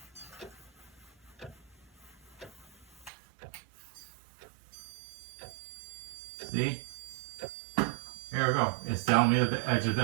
See? Here we go. It's telling me that the edge of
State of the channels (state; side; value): drops out; left; at 3.1 s